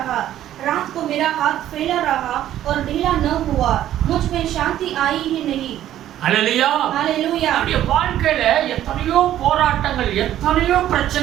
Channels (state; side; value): quieter; left; 12.2 dB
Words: रात को मेरा हाथ फैला रहा और ढीला न हुआ, मुझ में शांति आई ही नहीं। ஹல்லேலூயா. हालेलुया। அவருடைய வாழ்க்கையில எத்தனையோ போராட்டங்கள், எத்தனையோ